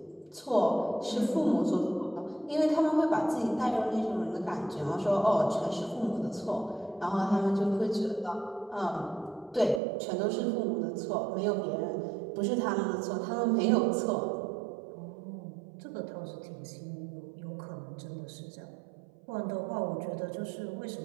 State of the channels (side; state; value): left; drops out; at 9.8 s